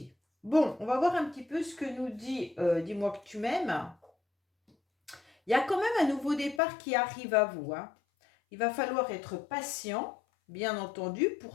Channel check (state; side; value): drops out; right; at 6.6 s